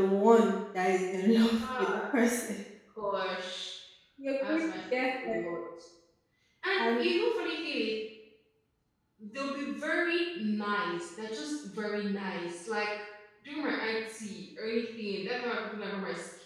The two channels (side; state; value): both; identical; correlation 1.00